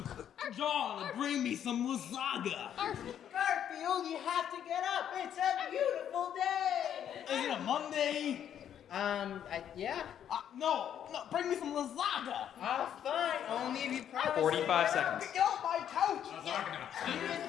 John, bring me some lasagna. Garfield, you have to get up. It's a beautiful day. Is it a Monday? Yeah. No, bring me some lasagna. Fine. Only if you promise. 45 seconds. Get off my couch. Lasagna. Here's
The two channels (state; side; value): quieter; right; 9.6 dB